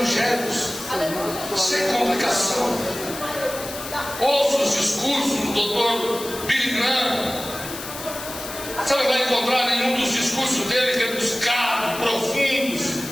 sem complicação. Ouça os discursos do Dr. Billy Graham. Você não vai encontrar nenhum dos discursos dele rebuscado, profundos.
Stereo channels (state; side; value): noise; left; hiss, 10 dB below the sound